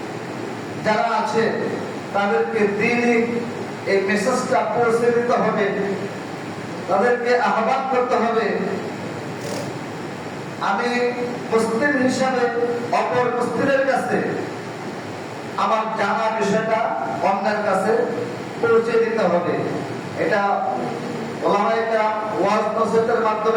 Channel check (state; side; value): identical; both; correlation 1.00